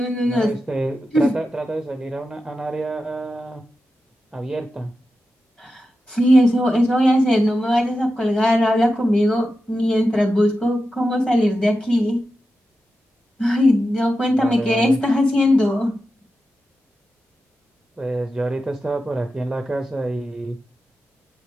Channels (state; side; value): normal; both; correlation 0.91